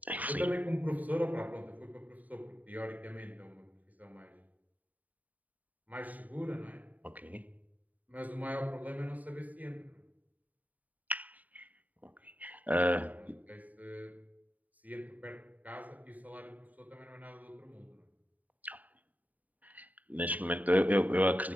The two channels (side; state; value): left; late; 0.075 ms